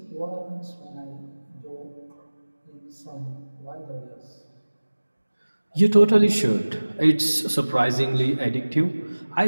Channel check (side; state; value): both; inverted; correlation -1.00